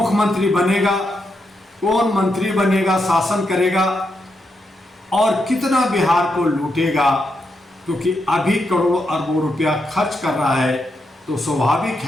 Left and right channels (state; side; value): normal; both; correlation 0.83